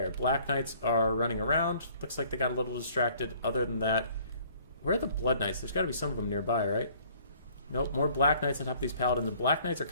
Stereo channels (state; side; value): inverted; both; correlation -0.57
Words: Black Knights are running around. Looks like they got a little distracted. Other than that, where are the Blood Knights? There's got to be some of them nearby, right? Nope, more Black Knights on top of these Paladins. And Black Knights are